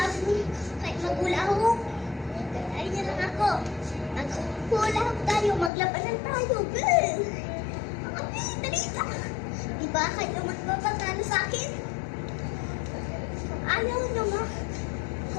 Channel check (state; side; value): drops out; right; at 5.7 s